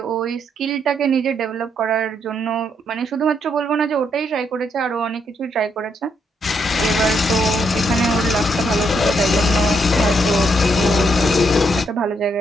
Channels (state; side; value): normal; both; correlation 0.76